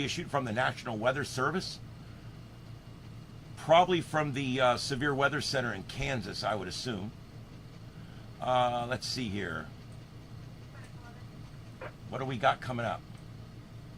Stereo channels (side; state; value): both; identical; correlation 1.00